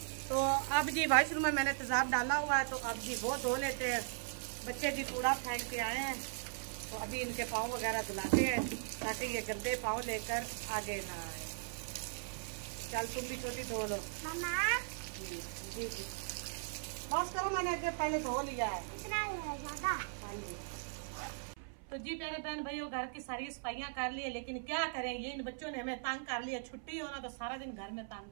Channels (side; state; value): left; silent; 52 dB below the other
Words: तो अब जी वॉशरूम में मैंने तेजाब डाला हुआ है, तो अब जी वो धो लेते हैं। बच्चे जी कूड़ा फेंक के आए हैं, तो अभी इनके पाँव वगैरह धुलाते हैं ताकि ये गंदे पाँव लेकर आगे ना आए। चल तुम भी छोटी धो लो। जी जी जी बस करो, मैंने अगर पहले धो लिया है। हाँ जी। तो जी प्यारे बहन भाइयों, घर की सारी सफाइयाँ कर ली है, लेकिन क्या करें, ये इन बच्चों ने हमें तंग कर लिया। छुट्टी हो ना तो सारा दिन घर में तंग